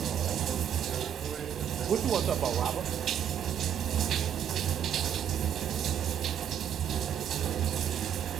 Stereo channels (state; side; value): quieter; left; 9.2 dB